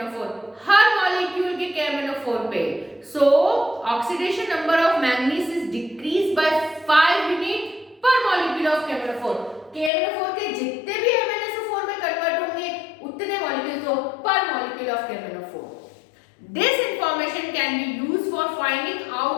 her molecule के KMnO4 पे। सो oxidation number of manganese is decrease by 5 unit पर मॉलिक्यूल ऑफ KMnO4। KMnO4 के जितने भी MnSO4 में कन्वर्ट होंगे, उतने मॉलिक्यूल्स हो पर molecule of KMnO4। This information can be used for finding out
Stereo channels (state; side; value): drops out; right; at 9.9 s